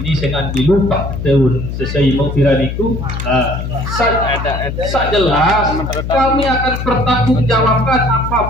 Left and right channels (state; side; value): noise; left; hum, 5 dB below the sound